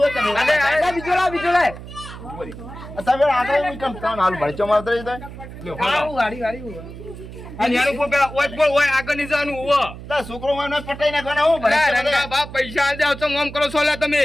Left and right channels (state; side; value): noise; right; hum, 13 dB below the sound